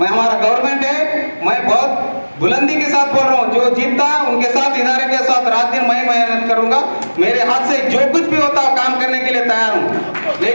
हमारा गवर्नमेंट है, मैं बहुत बुलंदी के साथ बोल रहा हूँ, जो जीतता उनके साथ, इदारे के साथ रात दिन मैं मेहनत करूंगा। मेरे हाथ से जो कुछ भी होता है काम करने के लिए लिए तैयार हूँ,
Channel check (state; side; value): inverted; both; correlation -1.00